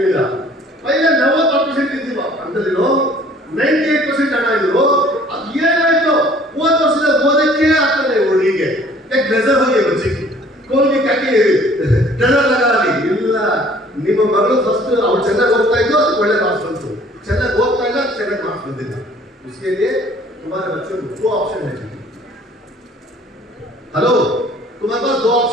मिला। पहले 90% ಇದ್ದೀವಿ ಅಂತಲಿರೋ 98% ಹಣ ಇದ್ರು, ಅದು ಏನಾಯ್ತು ಒಂದು ವರ್ಷದ ಓದಕ್ಕೆ ಆಗ್ತದೆ ಹುಡುಗಿಗೆ, ಯಾಕೆ ನಜರ್ ಹೋಗಿ ಬಚ್ಚಿ ಕೋಲ್ಗೆ ಕಾಕಿ ನಜರ್ ಲಗಾಲಿ ಇಲ್ಲ, ನಿಮ್ಮ ಮಗಳು ಫಸ್ಟ್ ಅವ್ರು ಚೆನ್ನಾಗಿ ಓದ್ತಾ ಇದ್ದು ಅದಕ್ಕೆ ಒಳ್ಳೆ ಮಾರ್ಕ್ಸ್ ಬಂತು, ಚೆನ್ನಾಗಿ ಓದ್ತಾ ಇಲ್ಲ ಚೆನ್ನಾಗಿ ಮಾರ್ಕ್ಸ್ ಬಂದಿಲ್ಲ, उसके लिए तुम्हारे बच्चों को 2 ऑप्शन है, हेलो, तुम्हारे पास दो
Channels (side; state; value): both; normal; correlation 0.54